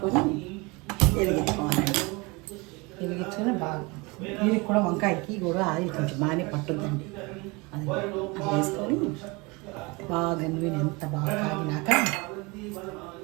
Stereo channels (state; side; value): quieter; left; 26.3 dB